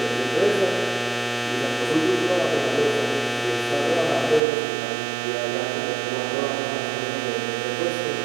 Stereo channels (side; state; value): left; drops out; at 4.4 s